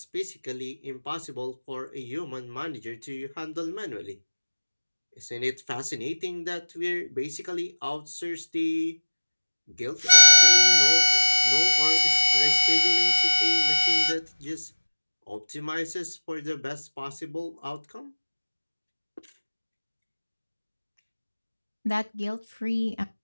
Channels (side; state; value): both; inverted; correlation -1.00